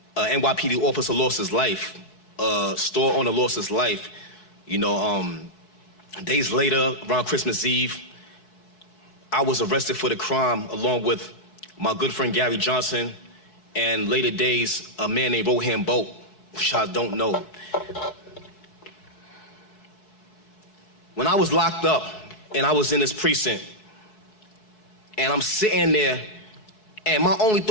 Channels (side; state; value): right; late; 4.7 ms